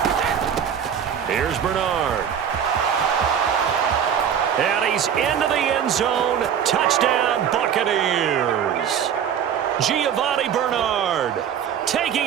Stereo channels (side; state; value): left; quieter; 8.5 dB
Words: Here's Bernard. And he's into the end zone. Touchdown, Buccaneers. Giovanni Bernard taking